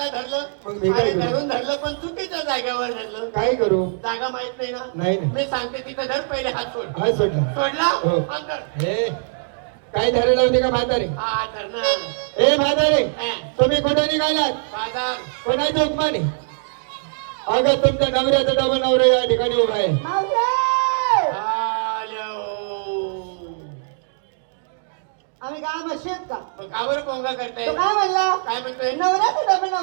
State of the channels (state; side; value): silent; left; digital silence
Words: धरलं मग मी काय आणि करू? धरून धरलं पण चुकीच्या जागेवर धरलं काय करू जागा माहित नाही ना नाही ना मी सांगते तिथं धर पहिले हात सोड हा सोडला सोडला हो. हात धर. हे काय धरायला होते का म्हातारे हा धर ना ए म्हातारे हा. तुम्ही कुठे निघालात बाजार कोणाची हुकमाने अगं तुमच्या नवऱ्याचा डबल नवरा या ठिकाणी उभा आहे मावशे! आल्या हो. आम्ही काय मशीद का मग का बरं कोंगा करताय तो काय म्हणला काय म्हणतोय नवऱ्याचा डबल